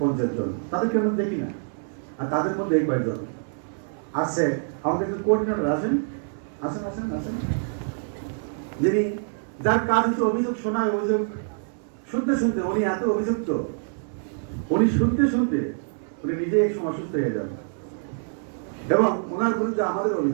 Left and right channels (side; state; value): left; silent; 59 dB below the other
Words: 50 জন। তাদেরকে আমরা দেখি না। আর তাদের মধ্যে এই কয়জন আছে, আমাদের একজন কোঅর্ডিনেটর আছেন, আসেন আসেন আসেন, যিনি, যার কাজ হচ্ছে অভিযোগ শোনায়, অভিযোগ শুনতে শুনতে উনি এত অভিযুক্ত, উনি শুনতে শুনতে উনি নিজে এক সময় অসুস্থ হয়ে যান। এবং ওনার বিরুদ্ধে আমাদের